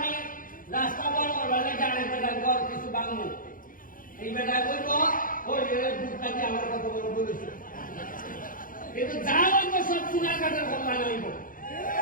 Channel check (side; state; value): right; late; 0.40 ms